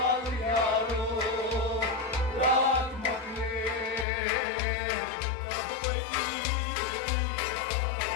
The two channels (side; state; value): right; drops out; at 4.0 s